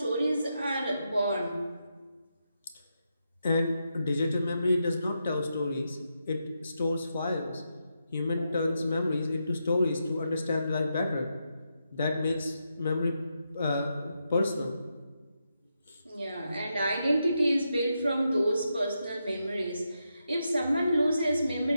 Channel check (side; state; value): both; inverted; correlation -0.84